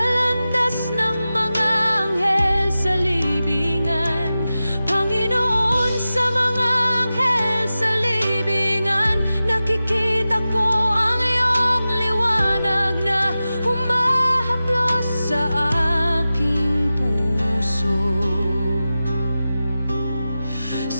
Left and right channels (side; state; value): both; inverted; correlation -0.94